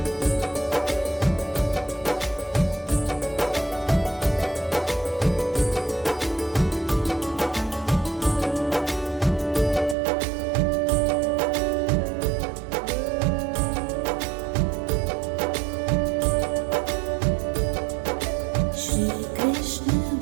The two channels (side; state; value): left; drops out; at 10.0 s